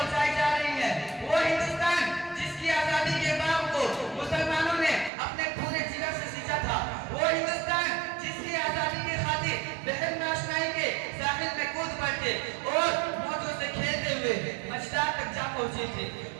جا رہی ہیں۔ وہ ہندوستان جس کی آزادی کے باغ کو مسلمانوں نے اپنے پورے جگر سے سینچا تھا، وہ ہندوستان جس کی آزادی کی خاطر بحر ناشنائی کے ساحل میں کود پڑتے اور موجوں سے کھیلتے ہوئے مجدار تک جا پہنچے تھے،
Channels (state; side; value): drops out; left; at 5.1 s